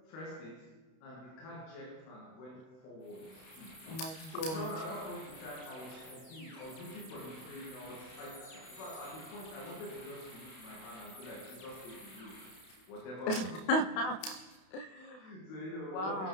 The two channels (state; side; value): late; right; 31 ms